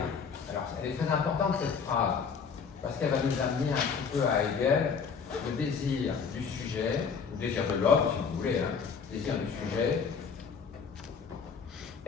Alors, elle est très importante cette phrase, parce qu'elle va nous amener un petit peu à Hegel, le désir du sujet, le désir de l'homme, si vous voulez, hein, le désir du sujet,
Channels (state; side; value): quieter; right; 6.1 dB